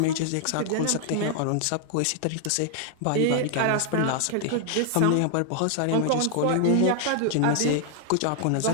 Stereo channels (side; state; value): both; different; correlation 0.00